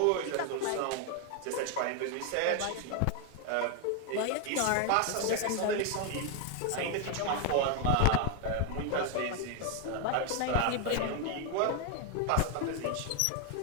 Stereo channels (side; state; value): both; different; correlation 0.01